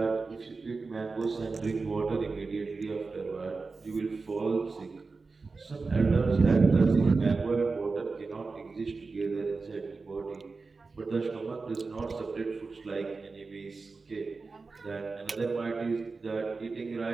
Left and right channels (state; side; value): quieter; left; 4.1 dB